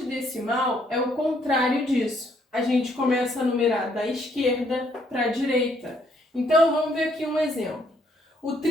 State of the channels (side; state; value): both; normal; correlation 0.69